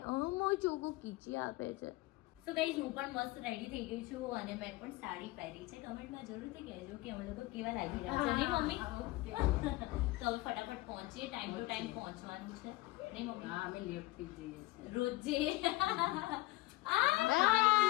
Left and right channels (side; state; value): right; quieter; 20.2 dB